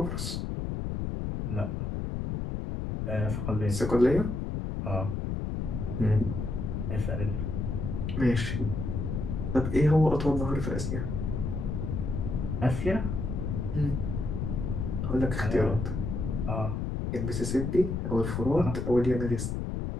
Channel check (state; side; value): noise; left; rumble, 2 dB below the sound